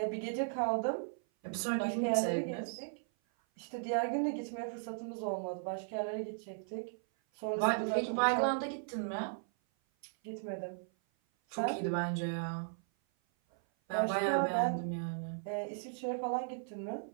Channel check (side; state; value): left; silent; 54 dB below the other